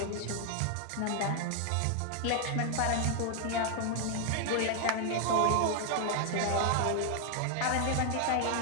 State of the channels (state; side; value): different; both; correlation 0.00